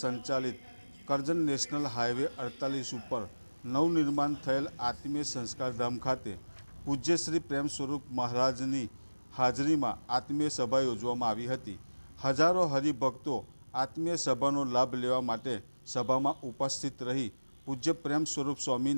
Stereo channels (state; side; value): inverted; both; correlation -1.00